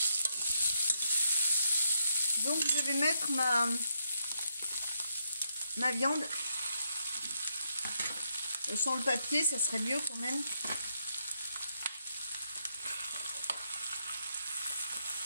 Donc, je vais mettre ma viande. Sans le papier, ça serait mieux quand même.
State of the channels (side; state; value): both; inverted; correlation -0.78